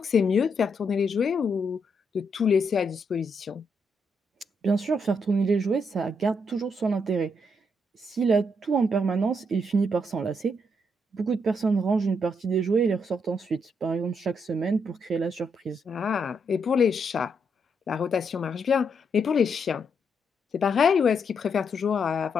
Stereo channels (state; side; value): normal; both; correlation 0.77